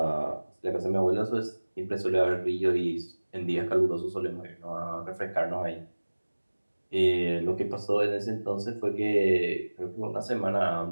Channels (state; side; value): inverted; both; correlation -1.00